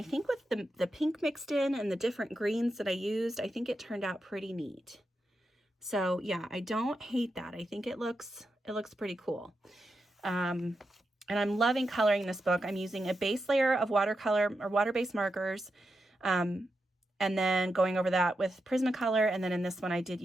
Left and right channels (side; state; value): both; normal; correlation 0.87